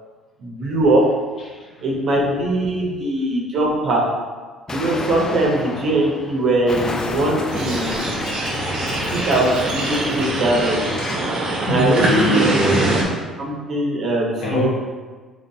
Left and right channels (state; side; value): normal; both; correlation 0.56